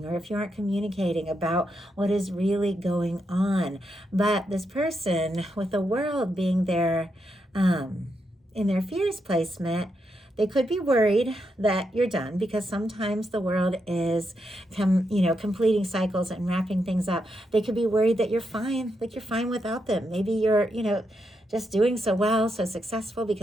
or if you aren't communicating about what is really going on. But this person with the world being there in their fears placement, they could be worried that you're done, because sometimes the world is completing cycles and wrapping things up. They could be worried that you're fine, like you're fine without them. Maybe you're just doing so well, so successful,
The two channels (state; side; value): normal; both; correlation 0.82